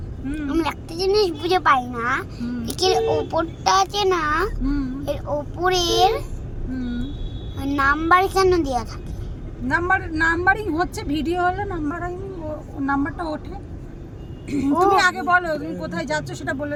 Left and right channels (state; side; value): identical; both; correlation 1.00